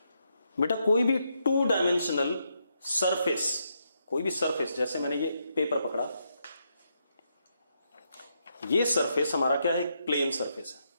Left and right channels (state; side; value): inverted; both; correlation -0.80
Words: बेटा कोई भी 2 डायमेंशनल सरफेस, कोई भी सरफेस, जैसे मैंने ये पेपर पकड़ा, ये सरफेस हमारा क्या है, प्लेन सरफेस है।